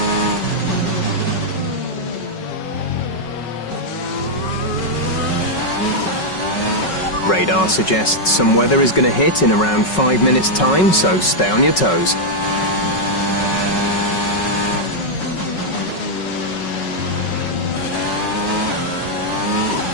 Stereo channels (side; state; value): right; late; 5.4 ms